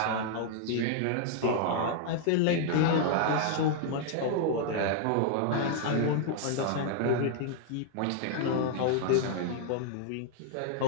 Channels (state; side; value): different; both; correlation -0.01